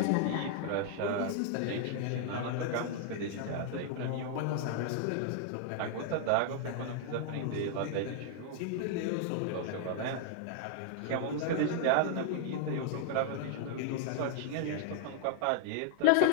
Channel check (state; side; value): different; both; correlation -0.01